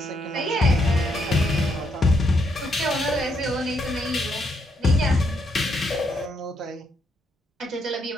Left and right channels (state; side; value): normal; both; correlation 0.76